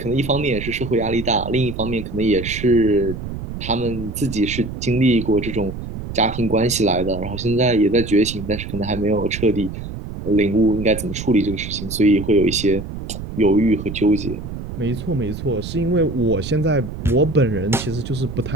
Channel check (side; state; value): right; noise; rumble, 8 dB below the sound